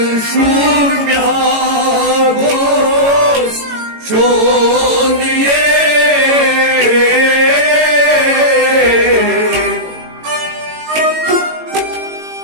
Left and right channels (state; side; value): late; left; 18 ms